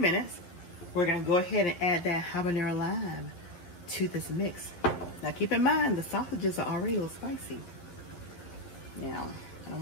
We're gonna go ahead and add that habanero lime to this mix. Now keep in mind, the sausages are already a little spicy. Now, I don't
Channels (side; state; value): right; late; 11 ms